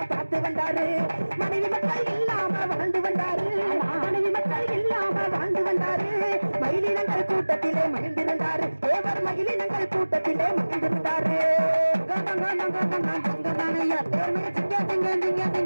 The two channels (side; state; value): both; inverted; correlation -1.00